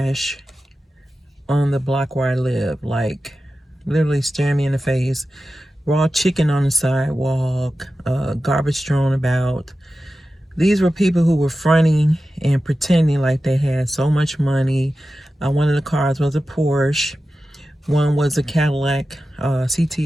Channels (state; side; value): normal; both; correlation 0.93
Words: on the block where I live. Like, literally staring me in the face. Raw chicken on the sidewalk, garbage thrown about. These were people who were fronting and pretending like they had so much money. One of the cars was a Porsche. One was a Cadillac